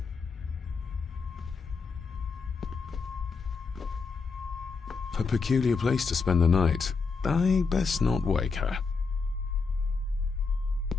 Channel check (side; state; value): right; quieter; 4.8 dB